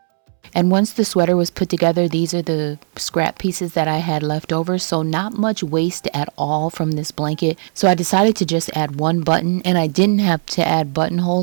And once the sweater was put together, these are the scrap pieces that I had left over. So not much waste at all from this blanket. So I decided to just add one button, and I didn't have to add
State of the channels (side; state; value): left; silent; 67 dB below the other